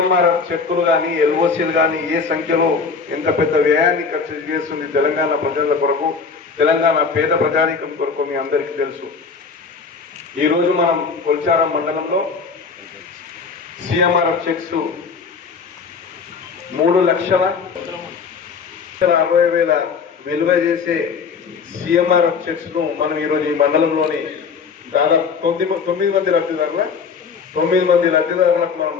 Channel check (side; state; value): right; quieter; 5.3 dB